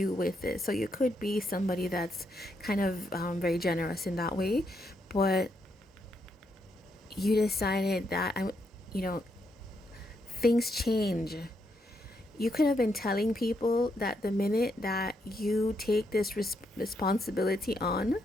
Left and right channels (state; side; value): normal; both; correlation 0.79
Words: with it. So you could be somebody that's kind of very generous in that way. But you decided that, you know, things change. You could have been telling people that the minute that you take this responsibility on,